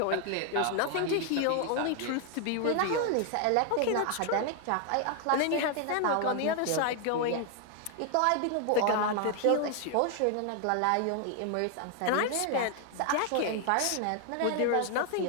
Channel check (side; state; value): both; different; correlation 0.00